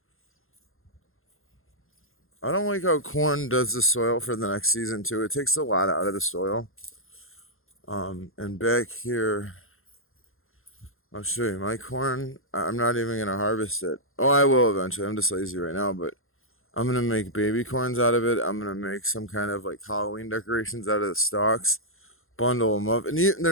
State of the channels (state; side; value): late; right; 0.61 ms